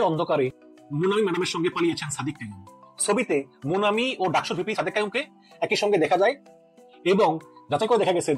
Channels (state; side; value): identical; both; correlation 1.00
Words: অন্ধকারে মোনামি ম্যাডামের সঙ্গে পালিয়েছেন সাদিক কাইয়ুম। ছবিতে মোনামি ও ডাকসুর ভিপি সাদিক কাইয়ুমকে একই সঙ্গে দেখা যায় এবং যাচাই করে দেখা গেছে